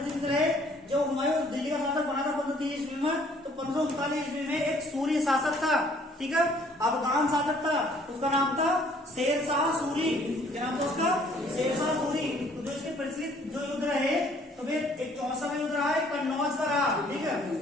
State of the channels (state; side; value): normal; both; correlation 0.60